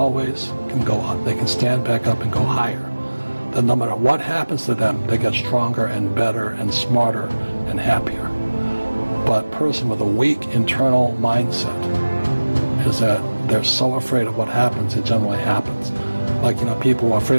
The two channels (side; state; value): both; inverted; correlation -1.00